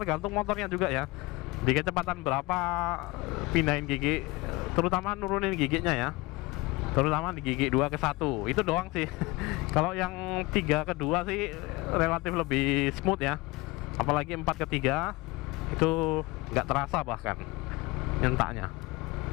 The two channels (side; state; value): right; quieter; 22.9 dB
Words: motornya juga ya. Di kecepatan berapa pindahin gigi, terutama nurunin giginya ya. Terutama di gigi 2 ke 1, itu doang sih. Kalau yang 3 ke 2 sih relatif lebih smooth ya. Apalagi 4 ke 3 itu nggak terasa bahkan nyentaknya.